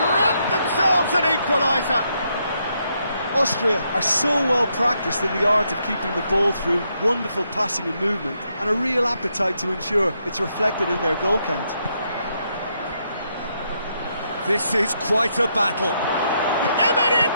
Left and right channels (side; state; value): both; inverted; correlation -0.78